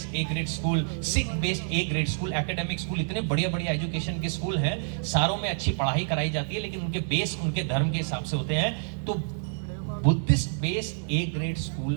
grade school, Sikh based A grade school, academic school, इतने बढ़िया बढ़िया एजुकेशन के स्कूल हैं। सारों में अच्छी पढ़ाई कराई जाती है, लेकिन उनके बेस उनके धर्म के हिसाब से होते हैं। तो Buddhist based A grade school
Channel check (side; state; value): left; silent; 60 dB below the other